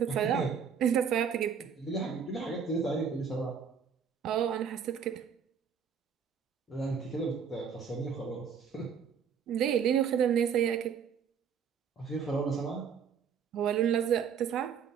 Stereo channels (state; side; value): quieter; left; 7.1 dB